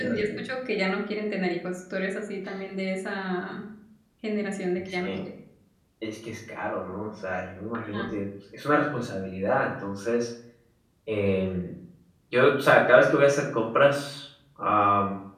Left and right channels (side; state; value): both; identical; correlation 1.00